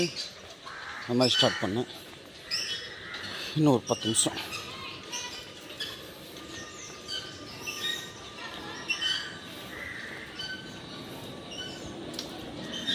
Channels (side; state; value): both; identical; correlation 1.00